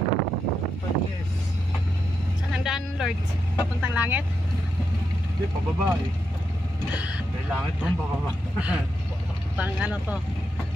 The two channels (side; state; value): both; normal; correlation 0.84